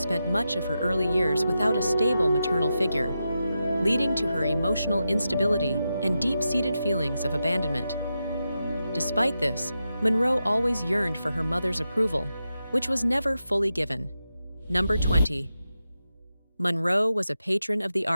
much of her early years without a stable maternal figure, leading to her emotional instability and deep-seated feelings of abandonment. Despite this, Monroe always yearned for her mother's approval, which was never fully given. Number 20. Monroe was a patron of the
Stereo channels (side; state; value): both; inverted; correlation -0.89